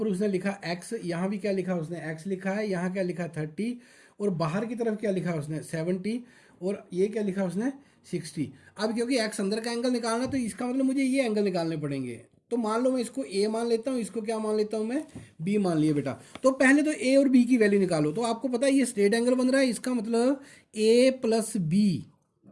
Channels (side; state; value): both; identical; correlation 1.00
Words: उसने लिखा x, यहाँ भी क्या लिखा उसने x लिखा है। यहाँ क्या लिखा 30, और बाहर की तरफ क्या लिखा उसने 70, और ये क्या लिखा उसने 60। अब क्योंकि x अंदर का एंगल निकालना, तो इसका मतलब मुझे ये एंगल निकालने पड़ेंगे। तो मान लो मैं इसको a मान लेता हूँ, इसको क्या मान लेता हूँ मैं, b मान लिया बेटा। तो पहले तो a और b की वैल्यू निकालो। तो आपको पता है ये स्ट्रेट एंगल बन रहा है, इसका मतलब a plus b,